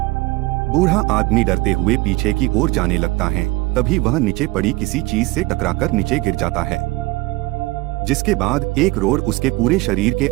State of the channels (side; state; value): left; quieter; 21.5 dB